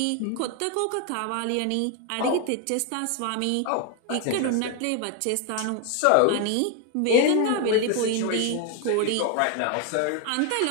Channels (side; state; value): both; different; correlation 0.01